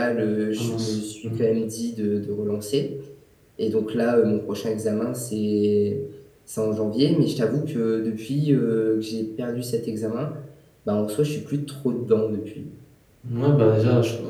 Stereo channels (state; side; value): identical; both; correlation 1.00